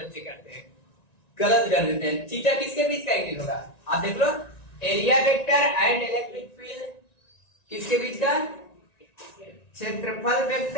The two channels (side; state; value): right; late; 1.9 ms